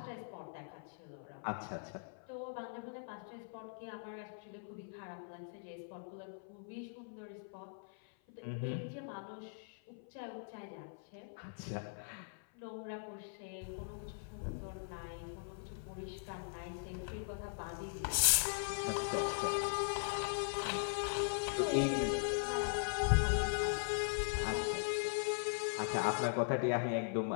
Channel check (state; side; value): silent; right; 51 dB below the other